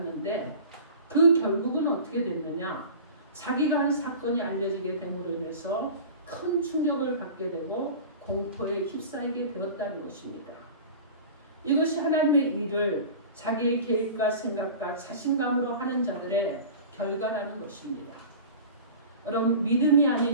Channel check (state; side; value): inverted; both; correlation -0.37